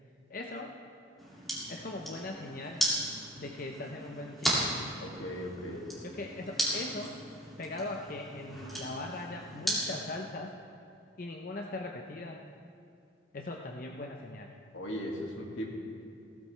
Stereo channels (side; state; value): both; normal; correlation 0.41